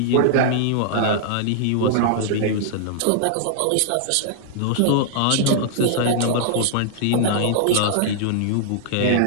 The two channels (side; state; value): both; different; correlation -0.01